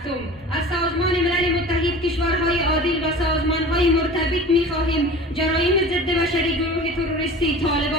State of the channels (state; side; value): normal; both; correlation 0.38